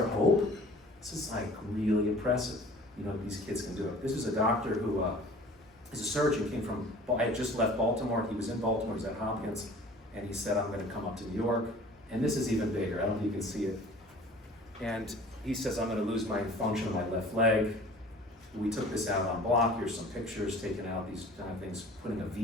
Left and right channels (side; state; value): both; normal; correlation 0.47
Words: hope? This is like really impressive. You know, these kids can do it. This is a doctor who is a surgeon, came from, I had just left Baltimore. He was in Baltimore, he was at Hopkins, and he said, I'm gonna come up to New York. And this is even bigger, I don't know if you can see it. And he says, I'm gonna lose my function of my left leg. We took this out on block. Here's some pictures taken out, these kind of things, putting a